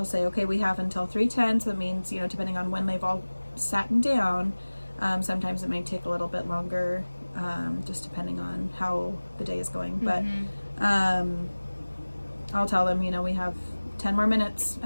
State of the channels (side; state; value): both; inverted; correlation -1.00